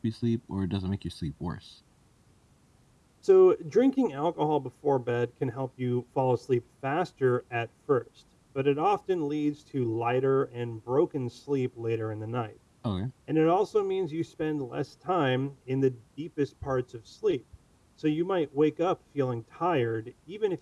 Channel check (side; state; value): both; identical; correlation 1.00